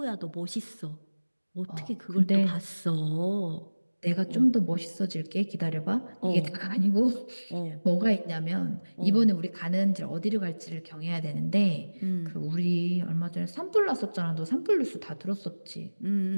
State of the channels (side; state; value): both; inverted; correlation -1.00